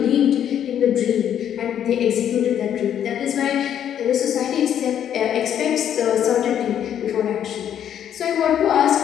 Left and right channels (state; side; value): quieter; right; 9.7 dB